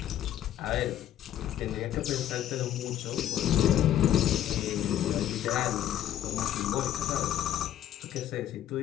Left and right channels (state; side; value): quieter; right; 11.7 dB